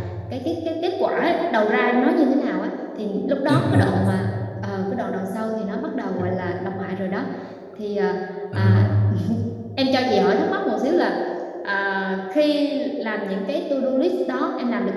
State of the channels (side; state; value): both; identical; correlation 1.00